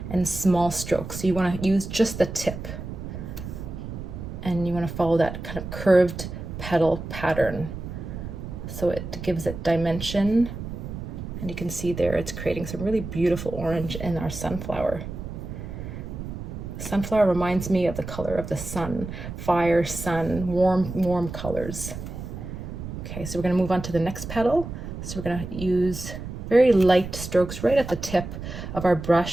and small strokes. So you want to use just the tip. And you want to follow that kind of curved petal pattern, so it gives it dimension. And you can see there it's creating some really beautiful orange in our sunflower. Sunflower reminds me of the color of the sun, fire, sun, warm colors. Okay, so we're going to move on to the next petal. So we're going to use very light strokes right at the tip of our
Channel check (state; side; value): noise; right; rumble, 8 dB below the sound